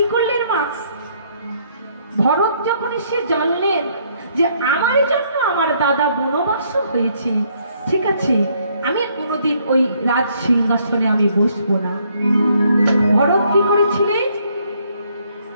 করলেন মা, ভরত যখন সে জানলেন যে আমার জন্য আমার দাদা বনবাস হয়েছে, ঠিক আছে আমি কোনোদিন ওই রাজ সিংহাসনে আমি বসবো না। ভরত কি করেছিলেন,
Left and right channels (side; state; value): both; inverted; correlation -0.68